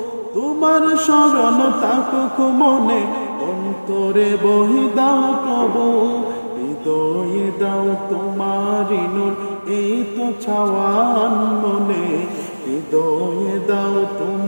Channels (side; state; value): both; inverted; correlation -1.00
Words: তোমার শরণ থাকুক মনে অন্তরে বই দাও প্রভু। হৃদয়ে দাও তোমারি নূর এই তো চাওয়ান মনে, হৃদয়ে দাও